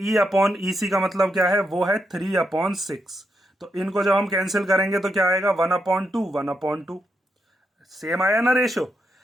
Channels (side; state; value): both; normal; correlation 0.82